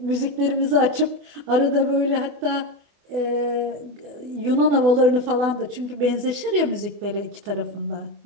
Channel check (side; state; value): left; late; 25 ms